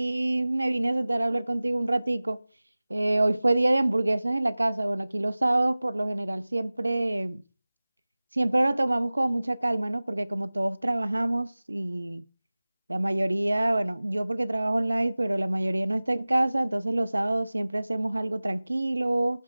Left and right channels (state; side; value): inverted; both; correlation -0.99